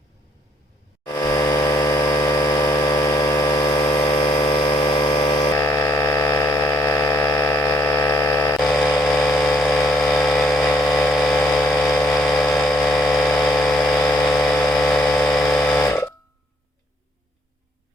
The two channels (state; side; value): normal; both; correlation 0.69